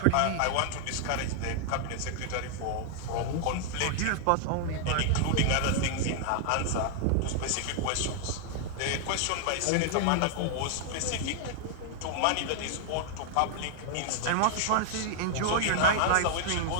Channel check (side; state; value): both; different; correlation -0.01